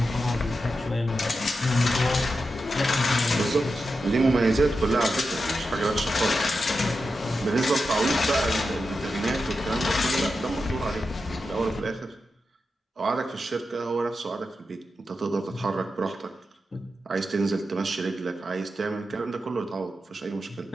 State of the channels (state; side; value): normal; both; correlation 0.89